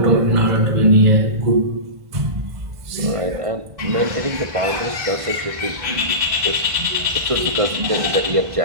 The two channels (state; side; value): late; left; 1.5 ms